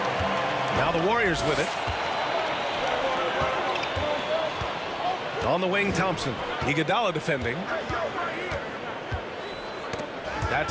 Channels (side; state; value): both; identical; correlation 1.00